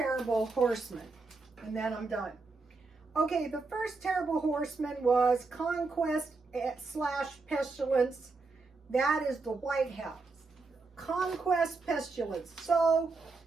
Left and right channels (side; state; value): left; quieter; 3.9 dB